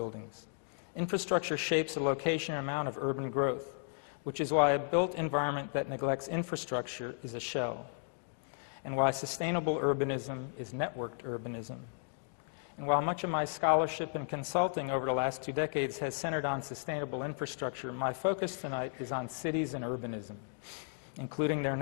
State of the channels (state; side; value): silent; right; digital silence